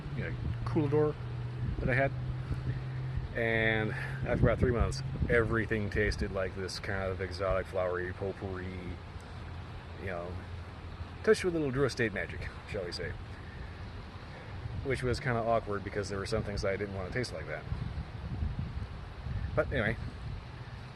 coolador that I had. And after about 3 months, everything tasted like this kind of exotic, flowery, potpourri, you know, touched with a little Dura State magic, shall we say. Which was kind of awkward because there were some things that I didn't want to taste like that. But anyway,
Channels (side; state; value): both; identical; correlation 1.00